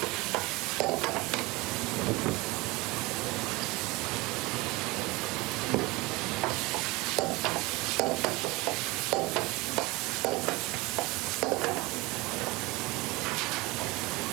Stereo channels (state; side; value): quieter; left; 23.1 dB